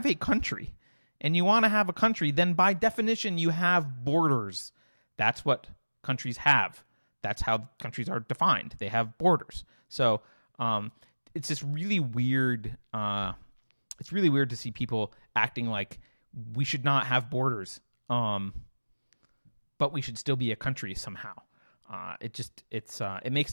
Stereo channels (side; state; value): both; inverted; correlation -1.00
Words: a country and you want to have a country, then by definition you have borders. That's what countries have. That's how countries are defined. They have borders. So it's just really weird. It's really weird to see people acting like we should not have borders, but we should still be a country somehow. It makes